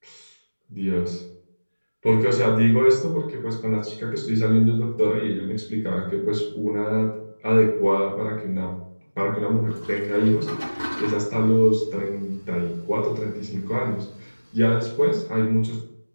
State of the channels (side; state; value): both; inverted; correlation -1.00